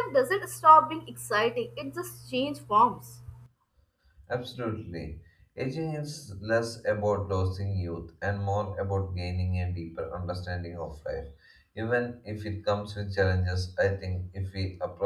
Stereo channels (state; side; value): identical; both; correlation 1.00